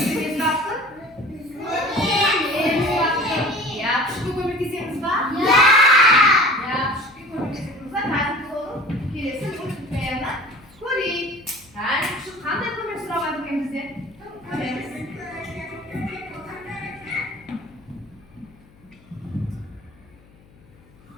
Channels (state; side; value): noise; left; hum, 27 dB below the sound